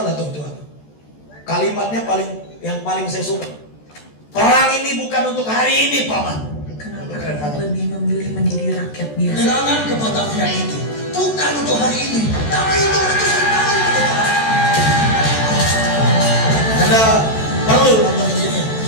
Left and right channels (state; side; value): late; right; 14 ms